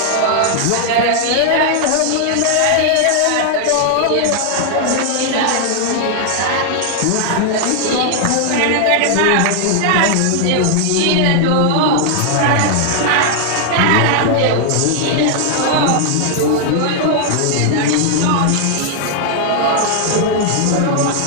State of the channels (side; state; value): both; different; correlation 0.00